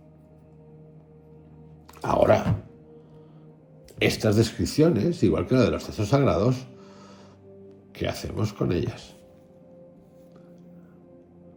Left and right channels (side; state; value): both; identical; correlation 1.00